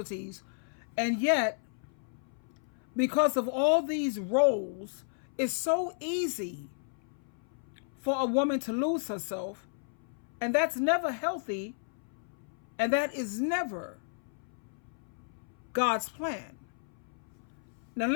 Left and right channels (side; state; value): right; silent; 56 dB below the other